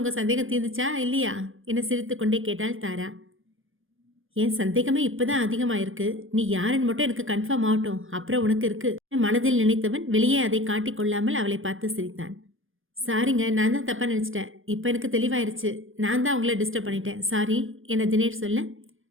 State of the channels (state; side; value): late; left; 0.59 ms